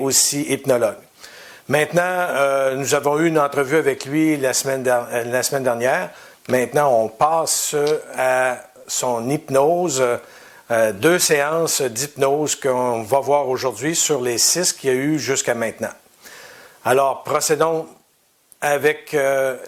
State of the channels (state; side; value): identical; both; correlation 1.00